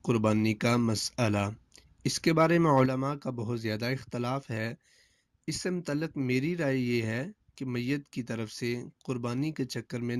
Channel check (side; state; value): both; identical; correlation 1.00